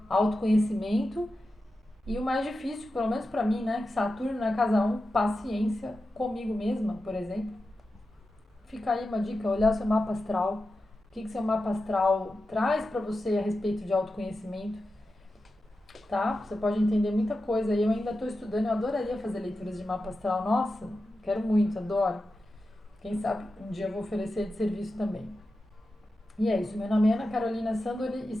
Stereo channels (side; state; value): both; normal; correlation 0.92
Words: autoconhecimento e o mais difícil, pelo menos pra mim, né, que Saturno na casa 1, paciência comigo mesma, por exemplo. Fica aí uma dica, olhar o seu mapa astral. O que seu mapa astral traz pra você a respeito de autoconhecimento, tá? Você pode entender muita coisa. Eu ainda estou estudando, eu adoraria fazer leituras de mapa astral. Nossa, quero muito, adoro. Quem sabe um dia eu vou oferecer de serviço também. E é isso, meu nome é Ana Carolina Sandori,